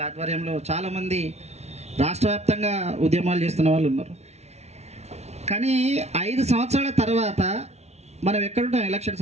ఆధ్వర్యంలో చాలామంది రాష్ట్ర వ్యాప్తంగా ఉద్యమాలు చేస్తున్న వాళ్ళు ఉన్నారు. కానీ 5 సంవత్సరాల తర్వాత మనం ఎక్కడుంటాం?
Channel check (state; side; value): late; left; 0.31 ms